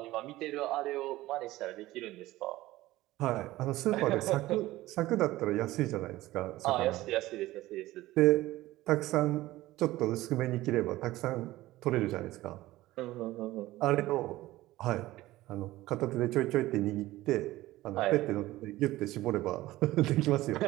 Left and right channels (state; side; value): quieter; left; 17.0 dB